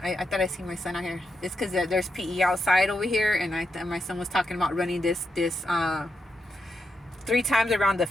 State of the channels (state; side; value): normal; both; correlation 0.84